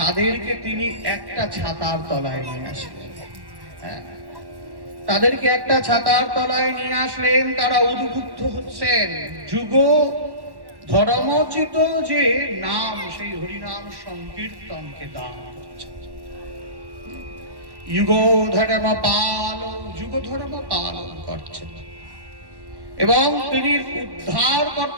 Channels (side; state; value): left; late; 1.1 ms